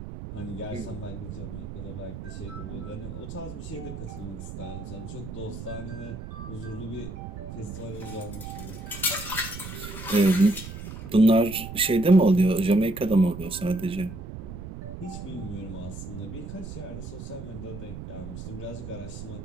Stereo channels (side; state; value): right; noise; rumble, 9 dB below the sound